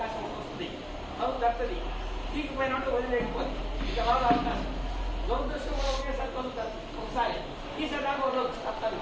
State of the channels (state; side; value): identical; both; correlation 1.00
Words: వస్తుంది, తలుపు తప్పుతుంది, తీగిపోయినట్టు వదిలేకపోతుంది, ఇక రాదు అవకాశం. దురదృష్టం కూడా ఒకేసారి తలుపు తప్పుతుంది, ఒకసారి తీసేదాకా వదలదు, తప్పదు.